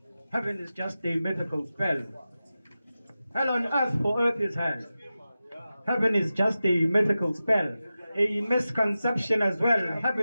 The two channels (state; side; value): inverted; both; correlation -0.94